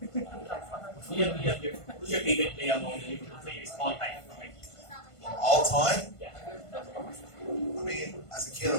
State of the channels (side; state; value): right; late; 1.5 ms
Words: Who's your favorite player among the Liverpool players all time? All time? Yeah. I mean, as a kid, I